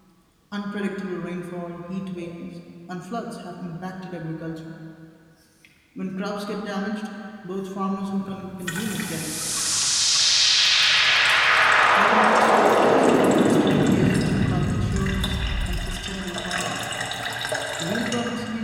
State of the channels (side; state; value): both; identical; correlation 1.00